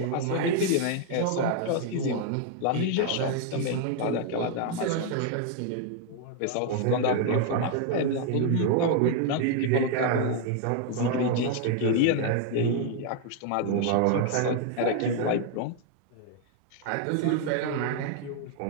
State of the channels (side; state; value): both; different; correlation 0.00